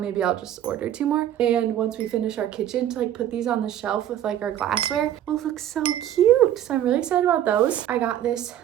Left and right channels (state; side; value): quieter; left; 11.4 dB